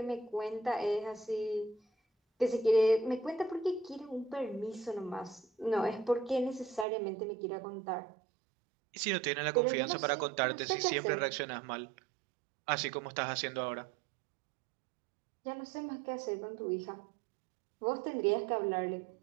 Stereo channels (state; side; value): drops out; left; at 6.9 s